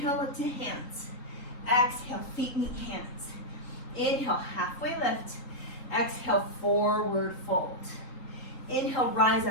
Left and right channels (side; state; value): right; late; 3.7 ms